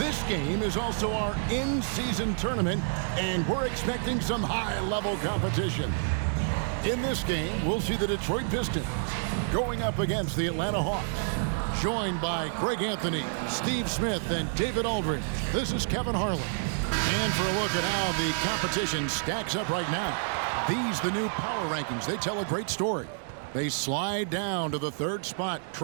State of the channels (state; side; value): silent; left; digital silence